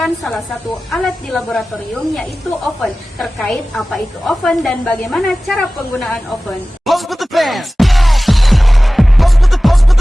salah satu alat di laboratorium, yaitu oven. Terkait apa itu oven dan bagaimana cara penggunaan oven. Pose with the bands.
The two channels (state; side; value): normal; both; correlation 0.97